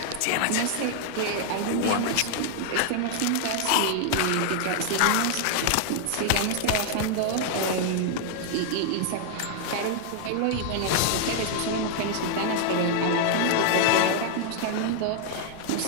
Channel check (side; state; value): both; different; correlation 0.00